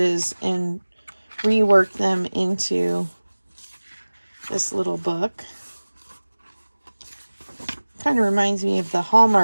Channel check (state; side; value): inverted; both; correlation -1.00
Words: and reworked them into this little book. Kind of reminds me of the